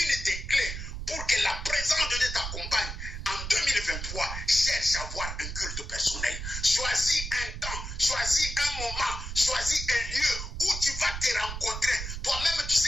des clés pour que la présence de Dieu t'accompagne en 2023, cherche à avoir un culte personnel. Choisis un temps, choisis un moment, choisis un lieu où tu vas te rencontrer. Toi-même, tu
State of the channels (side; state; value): right; noise; rumble, 6 dB below the sound